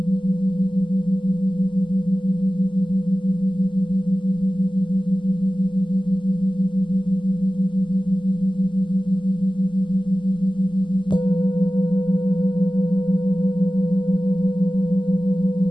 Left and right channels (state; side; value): late; right; 0.24 ms